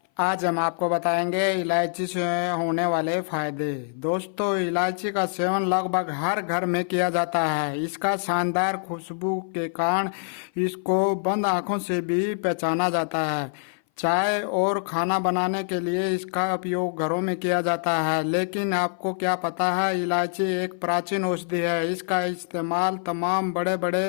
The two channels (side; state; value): right; silent; 58 dB below the other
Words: आज हम आपको बताएंगे इलायची से होने वाले फायदे। दोस्तों, इलायची का सेवन लगभग हर घर में किया जाता है। इसका शानदार खुशबू के कारण इसको बंद आंखों से भी पहचाना जाता है। चाय और खाना बनाने के लिए इसका उपयोग घरों में किया जाता है। लेकिन आपको क्या पता है, इलायची एक प्राचीन औषधि है। इसका इस्तेमाल तमाम बड़े बड़े